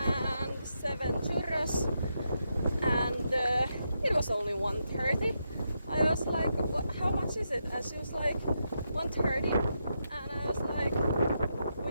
7 churros, and it was only 1:30. I was like, how much is it? And she was like, 1:30, and I was like,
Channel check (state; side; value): inverted; both; correlation -0.83